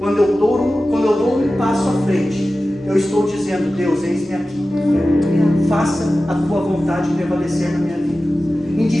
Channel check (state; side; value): normal; both; correlation 0.95